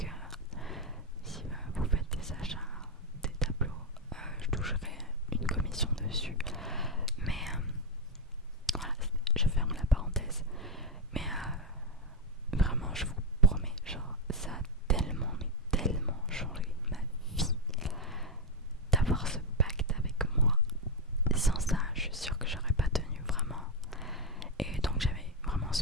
si vous faites des achats, des tableaux, je toucherai une commission dessus. Mais voilà, je ferme la parenthèse. Mais vraiment, je vous promets, genre, ça a tellement, mais tellement changé ma vie d'avoir ce pacte avec moi. Sans ça, je suis sûre que j'aurais pas tenu vraiment. Et donc j'avais vraiment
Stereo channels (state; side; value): normal; both; correlation 0.03